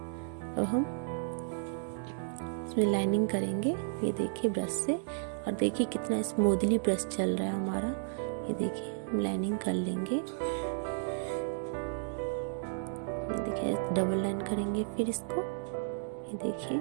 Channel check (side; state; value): left; silent; 56 dB below the other